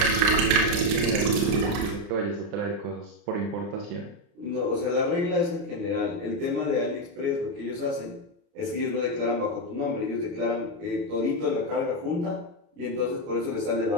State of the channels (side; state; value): left; late; 29 ms